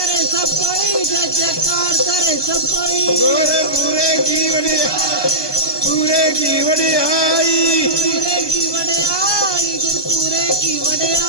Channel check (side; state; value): right; late; 1.2 ms